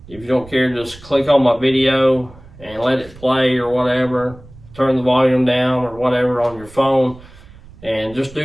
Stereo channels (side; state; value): right; noise; rumble, 21 dB below the sound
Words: if you don't care, just click on my video and let it play or whatever. Turn the volume down or whatever on your phone, and just